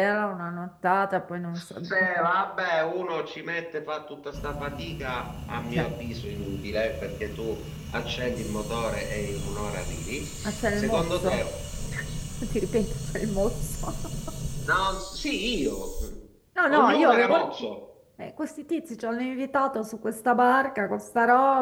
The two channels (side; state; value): both; identical; correlation 1.00